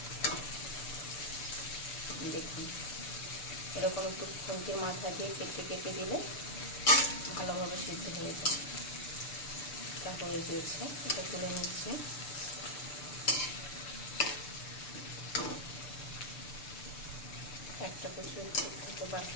দেখুন, এরকম একটু খুন্তির মাথা দিয়ে কেটে কেটে দিলে ভালোভাবে সিদ্ধ হয়ে যায়। এটা হয়ে গিয়েছে, এটা তুলে নিচ্ছি। একটা কচু একটু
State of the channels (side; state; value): right; late; 6.8 ms